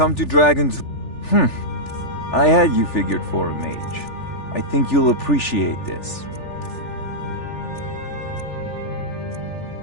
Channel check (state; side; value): late; right; 3.4 ms